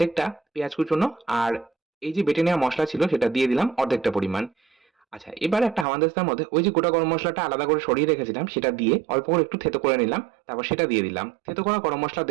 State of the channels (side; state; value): left; drops out; at 5.9 s